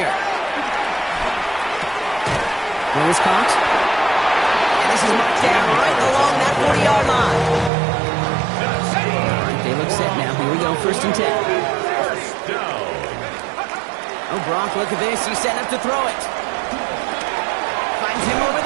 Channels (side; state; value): left; drops out; at 7.7 s